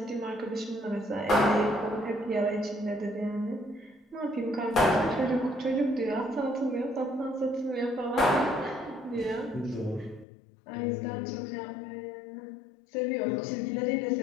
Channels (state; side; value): drops out; right; at 10.2 s